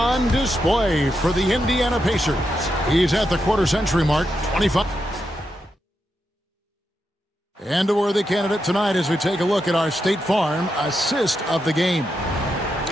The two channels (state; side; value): normal; both; correlation 0.85